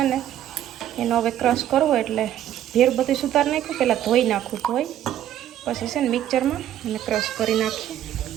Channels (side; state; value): left; quieter; 11.5 dB